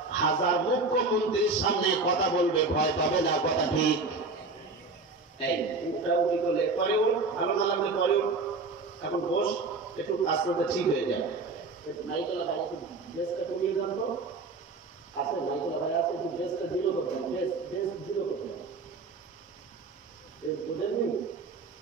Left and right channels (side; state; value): left; quieter; 3.8 dB